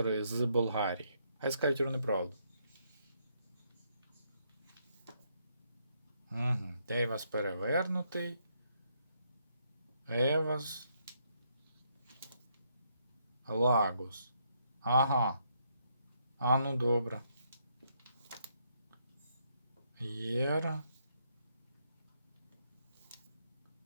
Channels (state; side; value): inverted; both; correlation -0.74